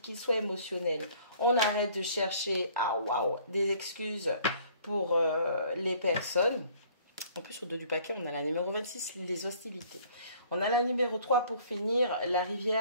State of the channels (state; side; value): inverted; both; correlation -0.56